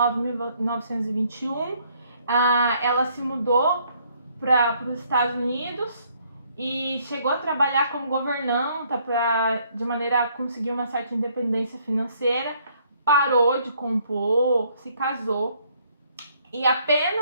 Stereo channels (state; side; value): inverted; both; correlation -0.66